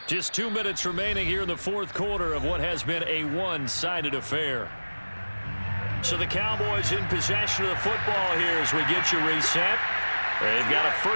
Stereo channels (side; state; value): both; inverted; correlation -1.00